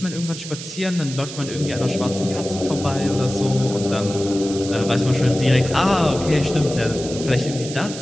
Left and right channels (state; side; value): noise; right; hiss, 11 dB below the sound